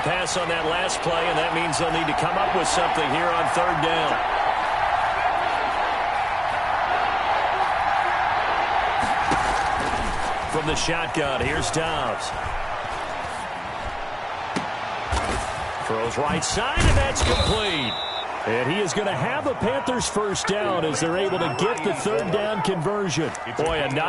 pass on that last play, and that means they'll need to come up with something here on third down. From the shotgun, here's Dobbs. Throws right side, and that's complete. And he is going to have a Panthers first down as they're able to get the third down conversion. Boy, a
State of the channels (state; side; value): identical; both; correlation 1.00